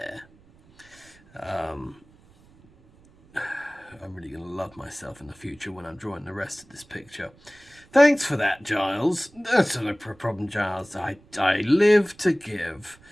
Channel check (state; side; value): noise; right; rumble, 28 dB below the sound